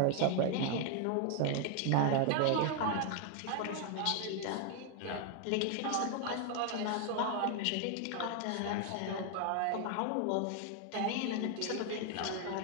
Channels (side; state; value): both; different; correlation 0.00